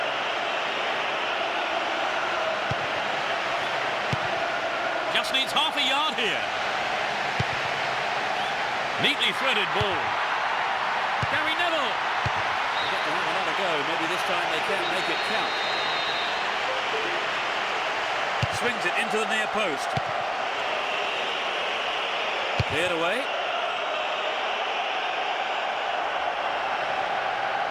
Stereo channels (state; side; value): identical; both; correlation 1.00